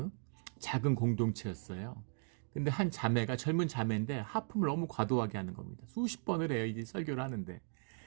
작은 공동체였어요. 근데 한 자매가, 젊은 자매인데 하품을 너무 과도하게 하는 겁니다. 수십 번을 해요, 이제 설교를 하는데.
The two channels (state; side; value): silent; left; 53 dB below the other